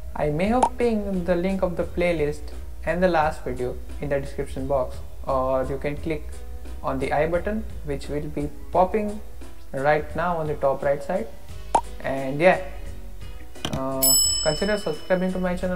I may have pinned the link of the playlist and the last video in the description box, or you can click on the I button which will be popping right now on the top right side. And yeah, consider subscribing to my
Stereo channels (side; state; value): both; identical; correlation 1.00